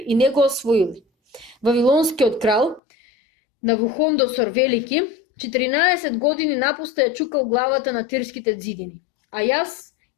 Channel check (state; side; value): drops out; right; at 2.8 s